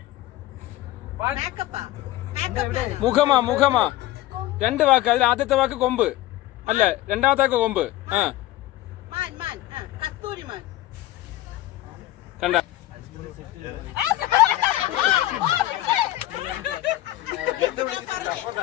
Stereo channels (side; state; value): right; quieter; 15.9 dB